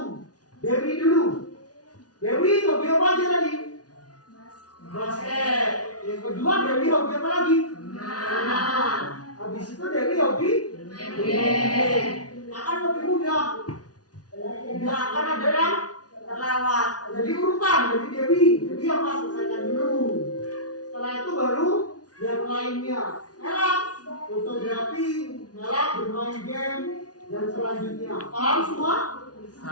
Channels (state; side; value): late; right; 0.69 ms